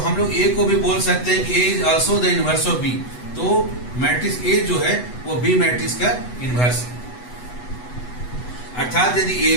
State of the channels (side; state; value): right; late; 8.1 ms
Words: लोग ए को भी बोल सकते हैं कि A is also the inverse of B, तो मैट्रिक्स ए जो है वो बी मैट्रिक्स का इनवर्स है। अर्थात यदि A